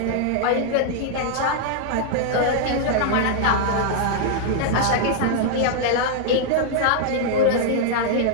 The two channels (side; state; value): both; different; correlation -0.01